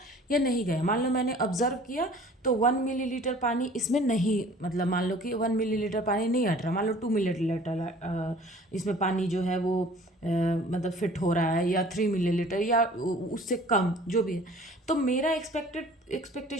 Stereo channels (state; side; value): normal; both; correlation 0.49